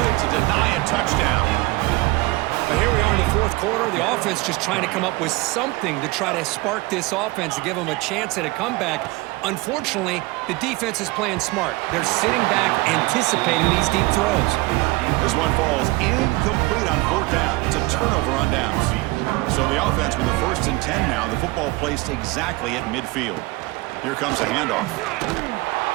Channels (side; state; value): left; quieter; 22.5 dB